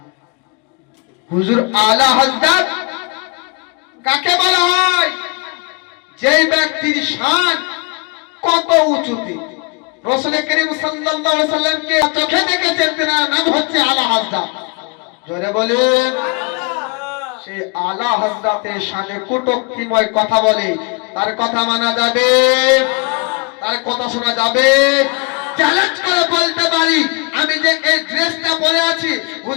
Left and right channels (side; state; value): right; quieter; 31.2 dB